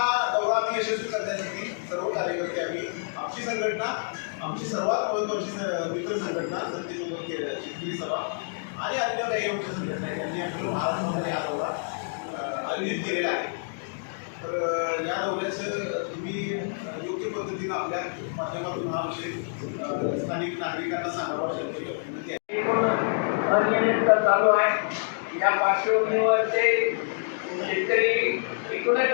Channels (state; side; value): silent; right; digital silence